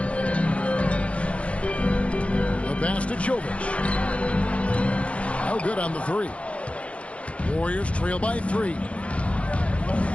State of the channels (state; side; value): late; right; 0.062 ms